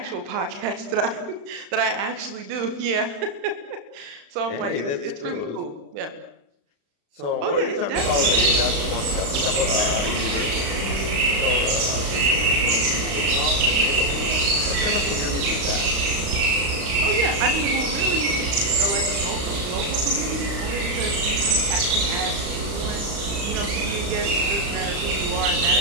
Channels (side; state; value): left; late; 36 ms